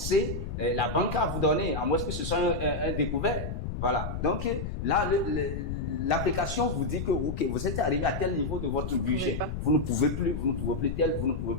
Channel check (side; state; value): left; noise; rumble, 5 dB below the sound